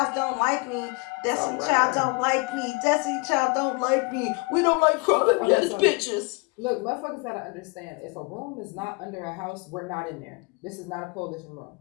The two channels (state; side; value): quieter; right; 29.2 dB